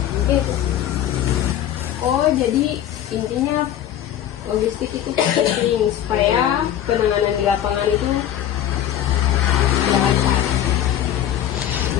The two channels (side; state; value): right; quieter; 11.0 dB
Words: Mungkin itu. Oh, jadi intinya logistik itu penting supaya penanganan di lapangan itu lancar.